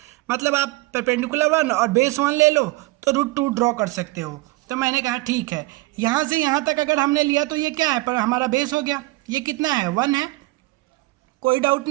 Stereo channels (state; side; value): quieter; left; 21.4 dB